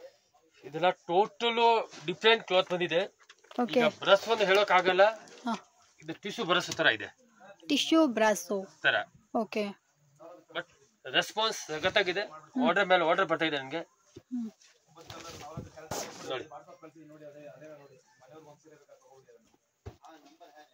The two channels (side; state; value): both; identical; correlation 1.00